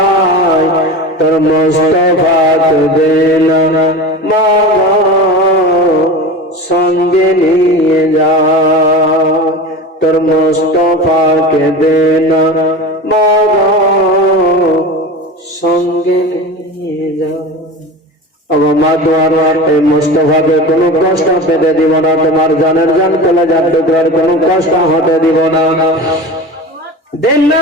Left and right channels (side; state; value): both; normal; correlation 0.30